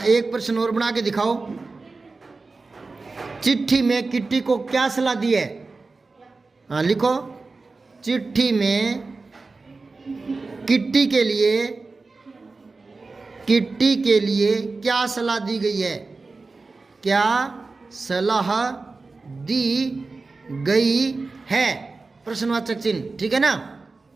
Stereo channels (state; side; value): quieter; left; 3.8 dB